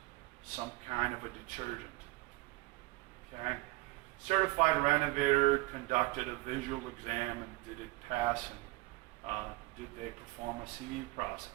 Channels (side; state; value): left; quieter; 21.6 dB